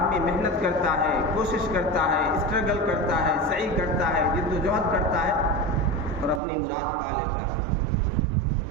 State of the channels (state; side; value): drops out; left; at 6.4 s